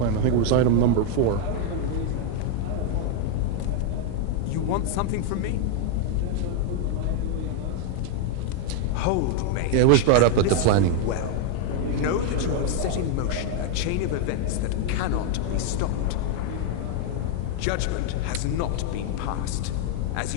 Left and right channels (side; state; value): both; different; correlation 0.00